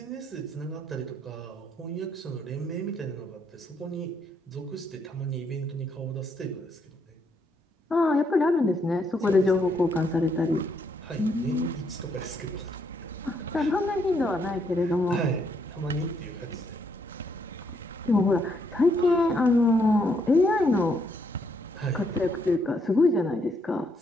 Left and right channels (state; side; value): normal; both; correlation 0.74